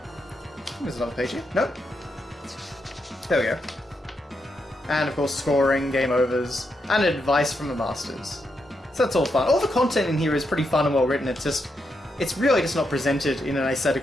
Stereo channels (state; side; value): normal; both; correlation 0.82